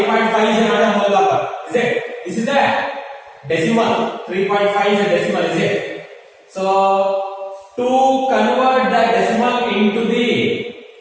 is not a whole number. Is it? This is a decimal. 3.5 is a decimal. Is it? So to convert the decimal into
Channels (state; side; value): identical; both; correlation 1.00